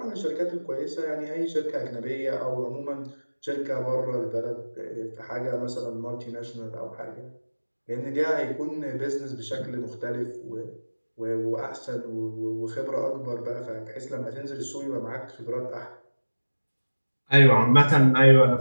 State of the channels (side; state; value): both; inverted; correlation -1.00